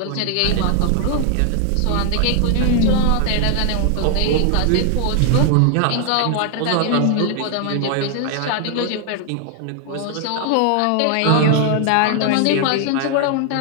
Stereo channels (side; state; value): both; different; correlation 0.00